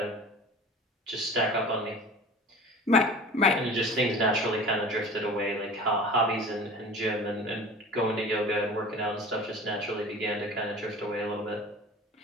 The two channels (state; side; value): normal; both; correlation 0.39